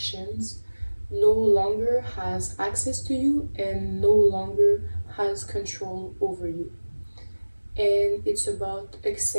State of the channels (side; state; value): both; inverted; correlation -1.00